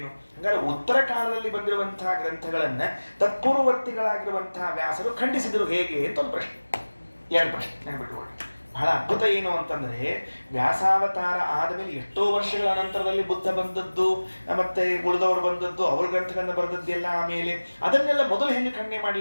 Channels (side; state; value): both; inverted; correlation -1.00